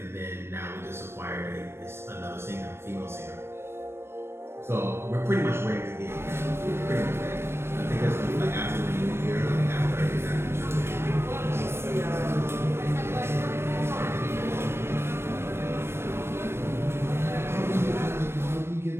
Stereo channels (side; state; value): left; late; 0.12 ms